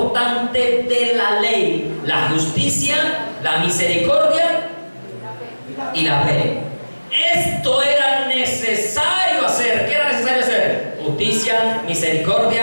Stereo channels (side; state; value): both; inverted; correlation -1.00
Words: de la ley, la justicia, la misericordia y la fe. Esto era necesario hacer. ¿Qué era necesario hacer? Justicia,